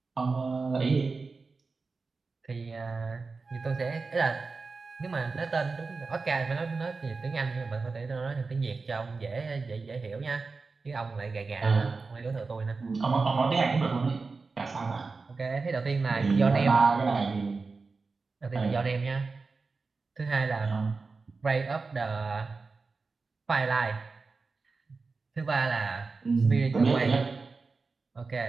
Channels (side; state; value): left; quieter; 4.2 dB